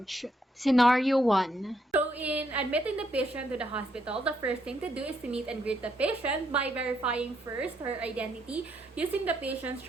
Scenario 1. So in admitting the patient to the hospital, the first thing to do is to meet and greet the patient by verifying first her identity using the patient's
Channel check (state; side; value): normal; both; correlation 0.75